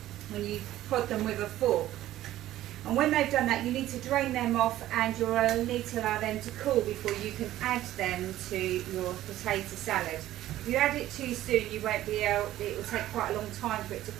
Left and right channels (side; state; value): left; quieter; 14.1 dB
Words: prod them with a fork. And when they've done that, you need to drain them off, and you'll need to allow them to cool before you can add them to your potato salad. If you add it too soon, you won't be able. It will take quite a long time for it to